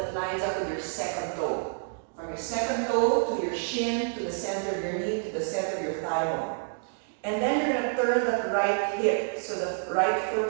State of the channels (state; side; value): silent; left; digital silence